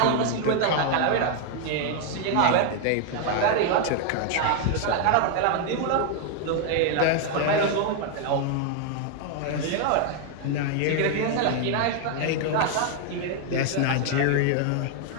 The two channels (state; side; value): different; both; correlation 0.00